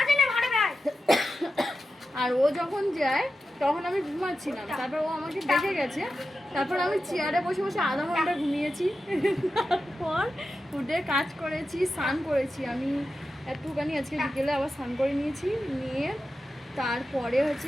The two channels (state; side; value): normal; both; correlation 0.91